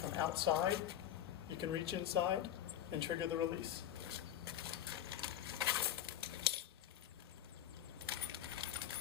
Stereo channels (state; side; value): quieter; right; 11.2 dB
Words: outside, you can reach inside and trigger the release.